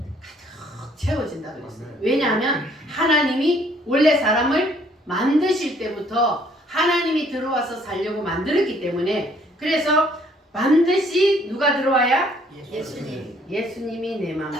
채워진다 그랬어요. 왜냐하면 하나님이 원래 사람을 만드실 때부터 하나님이 들어와서 살려고 만들었기 때문에, 그래서 반드시 누가 들어와야? 예수님이 내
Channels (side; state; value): both; normal; correlation 0.62